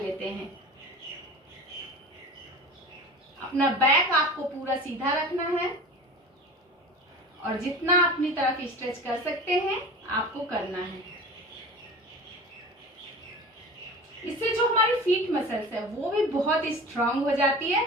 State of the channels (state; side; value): normal; both; correlation 0.36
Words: हैं। अपना बैक आपको पूरा सीधा रखना है और जितना अपनी तरफ स्ट्रेच कर सकते हैं आपको करना है। इससे जो हमारी फीट मसल्स है वो भी बहुत स्ट्रांग हो जाती है